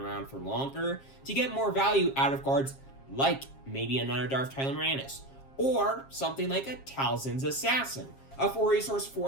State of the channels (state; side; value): late; right; 7.4 ms